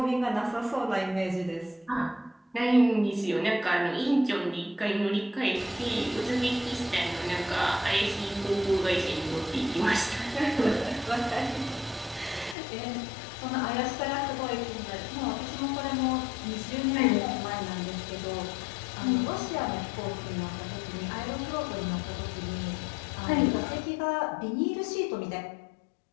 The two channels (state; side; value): drops out; right; at 12.6 s